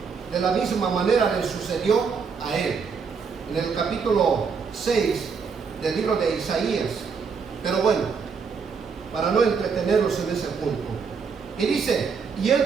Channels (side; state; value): left; quieter; 5.7 dB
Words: de la misma manera le sucedió a él, en el capítulo 6 del libro de Isaías. Pero bueno, para no entretenerlos en ese punto, y dice: y